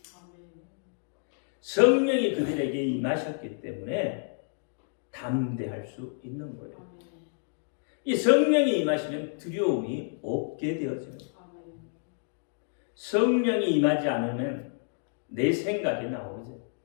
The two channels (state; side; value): silent; right; digital silence